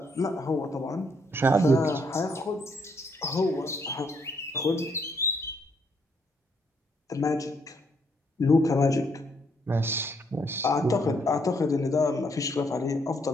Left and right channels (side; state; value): both; normal; correlation 0.72